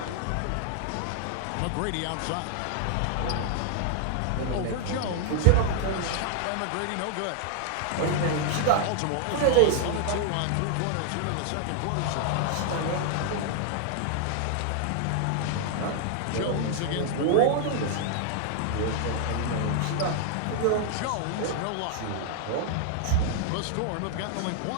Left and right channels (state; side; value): different; both; correlation 0.00